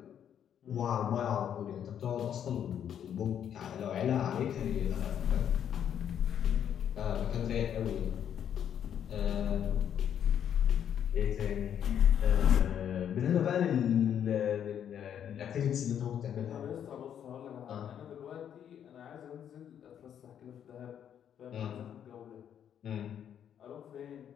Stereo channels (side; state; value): right; quieter; 9.2 dB